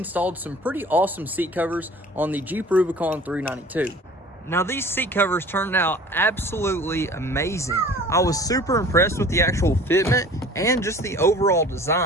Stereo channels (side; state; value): both; normal; correlation 0.46